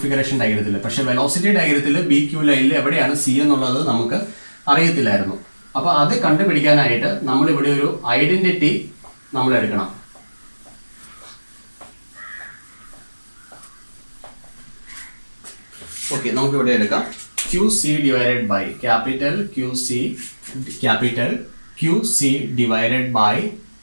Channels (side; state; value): both; inverted; correlation -1.00